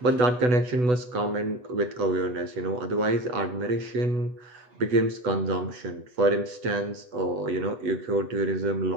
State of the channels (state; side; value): late; left; 8.1 ms